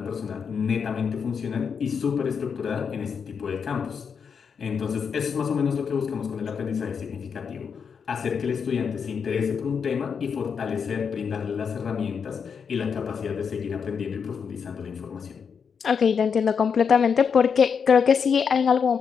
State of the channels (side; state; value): right; quieter; 6.4 dB